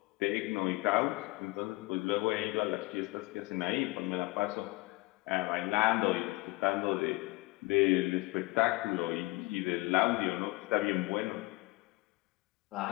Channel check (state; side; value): quieter; right; 22.7 dB